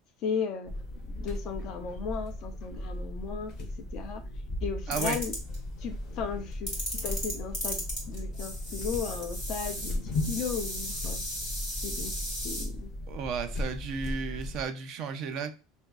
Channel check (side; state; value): both; normal; correlation 0.47